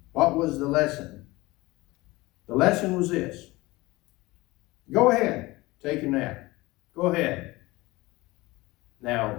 What was the lesson? The lesson was this. Go ahead, take a nap. Go ahead. Now,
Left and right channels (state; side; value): quieter; right; 20.7 dB